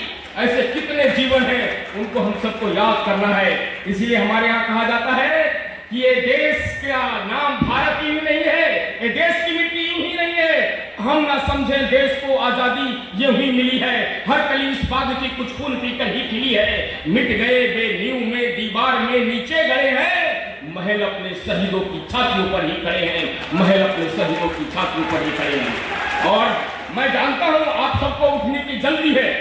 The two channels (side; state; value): both; identical; correlation 1.00